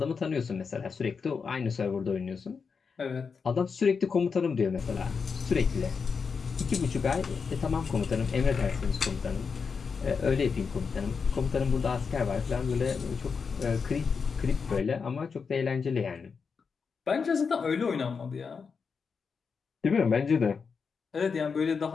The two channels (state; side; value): quieter; right; 5.5 dB